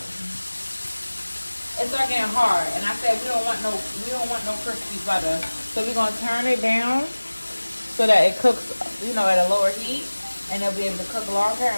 And I said we don't want no crispy butter. So we're gonna turn it down so that it cooks, you know, at a lower heat, and it'll be able to cook longer.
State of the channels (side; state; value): both; inverted; correlation -1.00